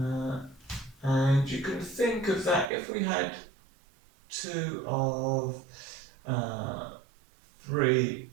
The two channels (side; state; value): left; drops out; at 2.7 s